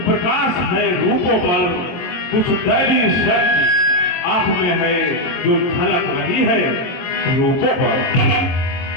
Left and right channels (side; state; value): right; late; 22 ms